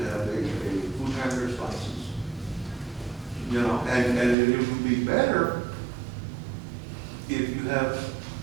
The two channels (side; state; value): left; drops out; at 4.4 s